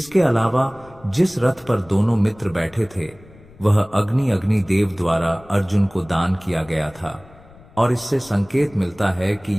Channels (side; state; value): left; noise; rumble, 24 dB below the sound